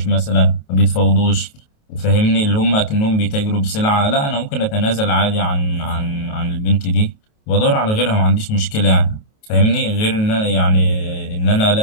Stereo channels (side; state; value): right; late; 28 ms